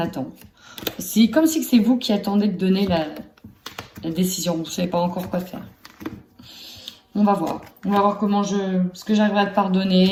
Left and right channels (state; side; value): identical; both; correlation 1.00